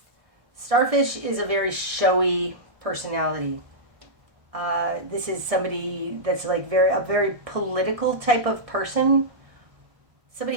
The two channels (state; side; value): late; left; 1.7 ms